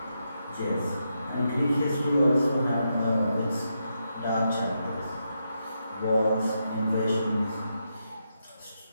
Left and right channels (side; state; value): both; inverted; correlation -0.83